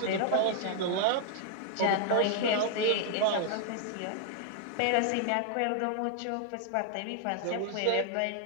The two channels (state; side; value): different; both; correlation 0.00